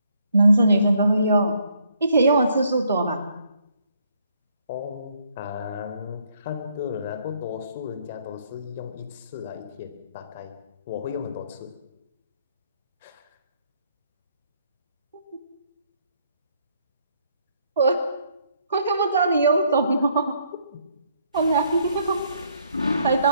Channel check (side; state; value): both; inverted; correlation -0.69